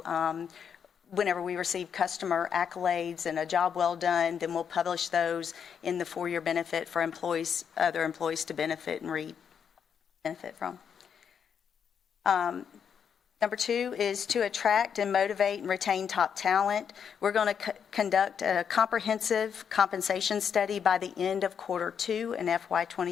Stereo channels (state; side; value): quieter; right; 7.4 dB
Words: whenever we receive customer accolades and a job well done, then we'll publish those in the 4-year benefit for employees, other employees to benefit and benefit from. Number 2 is to attract and motivate and retain top talent. We're going to conduct a comprehensive compensation study by the end of Q2 in FY